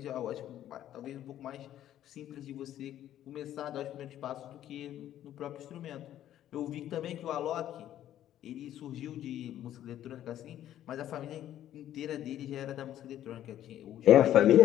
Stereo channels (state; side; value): quieter; right; 11.9 dB